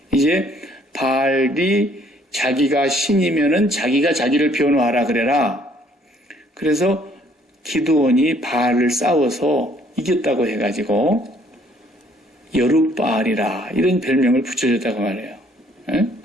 이제 바알이 자기가 신이면은 자기가 자기를 변호하라 그래라. 그래서 기드온이 바알을 싸워서 이겼다고 해가지고 여룻바알이라 이런 별명을 붙여줬다고 말해요.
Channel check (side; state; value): both; normal; correlation 0.63